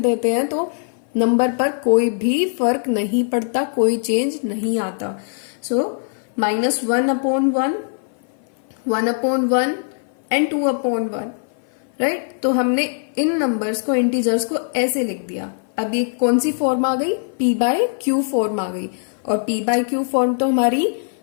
हैं तो नंबर पर कोई भी फर्क नहीं पड़ता, कोई चेंज नहीं आता। सो -1/1, 1/1 एंड 2/1, राइट। तो हमने इन नंबर्स को, इंटीजर्स को ऐसे लिख दिया। अब ये कौन सी फॉर्म आ गई, p/q फॉर्म आ गई। और p/q फॉर्म तो हमारी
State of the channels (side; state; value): right; silent; 56 dB below the other